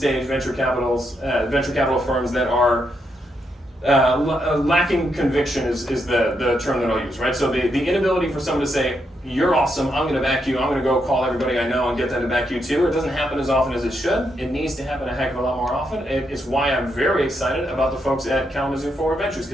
venture capital firms that are lacking conviction is the term that I'll use, right? So the inability for someone to say, you're awesome, I'm going to back you, I'm going to go call everybody I know and get them to back you too. It doesn't happen as often as it should. It needs to happen a heck of a lot more often. It's why I'm very excited about the folks at Kalamazoo Forward Ventures,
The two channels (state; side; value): normal; both; correlation 0.80